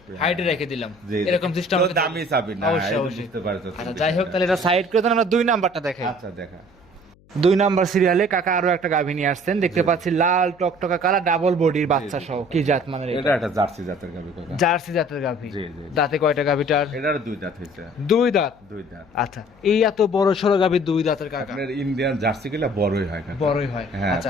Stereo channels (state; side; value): noise; left; hum, 29 dB below the sound